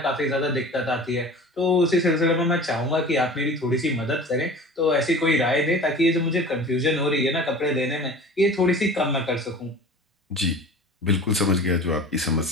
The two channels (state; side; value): normal; both; correlation 0.40